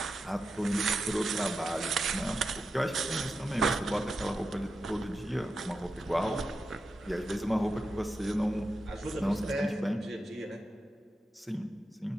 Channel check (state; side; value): normal; both; correlation 0.89